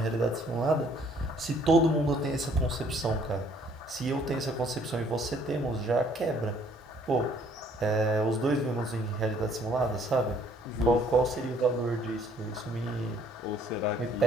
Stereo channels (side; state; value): both; normal; correlation 0.62